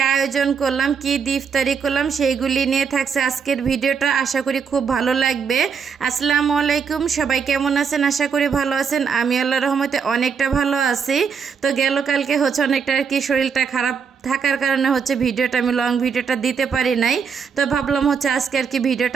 আয়োজন করলাম, কি দিয়ে ইফতারি করলাম সেইগুলি নিয়ে থাকছে আজকের ভিডিওটা। আশা করি খুব ভালো লাগবে। আসসালামু আলাইকুম, সবাই কেমন আছেন? আশা করি ভালো আছেন। আমি আল্লাহর রহমতে অনেকটা ভালো আছি। তো গেল কালকে অনেকটা আর কি শরীরটা খারাপ থাকার কারণে ভিডিওটা আমি লং ভিডিওটা দিতে পারি নাই। তো ভাবলাম আজকে আর কি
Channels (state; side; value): quieter; left; 6.2 dB